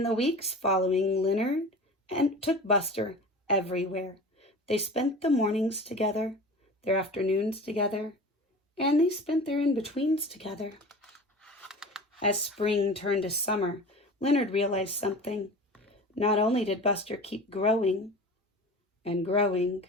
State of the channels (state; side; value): normal; both; correlation 0.36